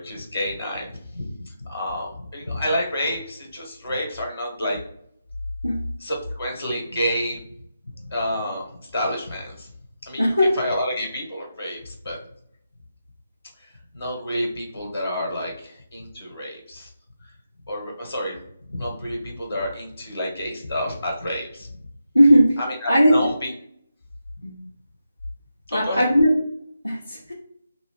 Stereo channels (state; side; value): inverted; both; correlation -0.87